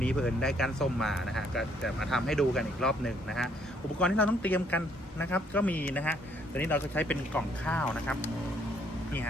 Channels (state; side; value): normal; both; correlation 0.67